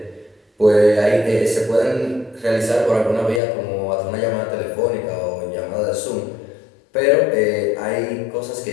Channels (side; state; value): right; drops out; at 3.4 s